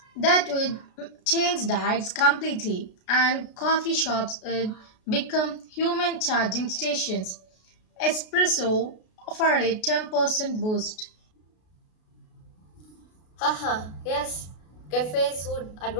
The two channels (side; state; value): right; late; 33 ms